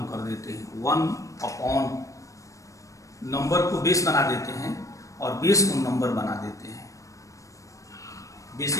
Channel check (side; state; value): right; late; 0.16 ms